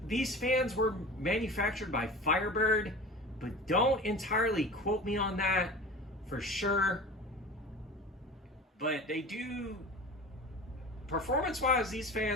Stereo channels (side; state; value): both; normal; correlation 0.35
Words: these fans were manufactured by Firebird, but don't entirely quote me on that for sure. But they do, performance-wise, these